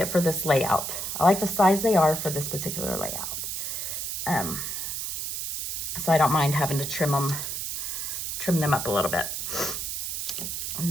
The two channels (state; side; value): noise; right; hiss, 3 dB below the sound